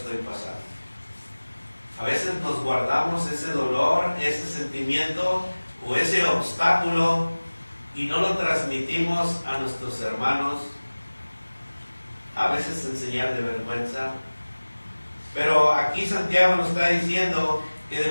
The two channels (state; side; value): inverted; both; correlation -1.00